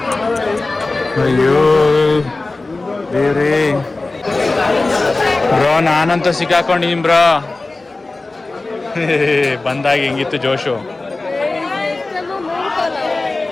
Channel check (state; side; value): quieter; right; 3.3 dB